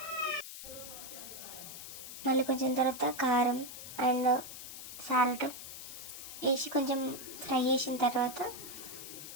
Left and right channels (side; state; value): left; noise; hiss, 11 dB below the sound